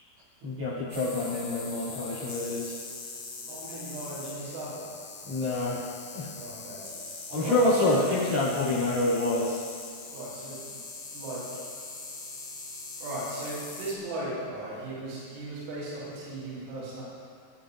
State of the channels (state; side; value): late; left; 30 ms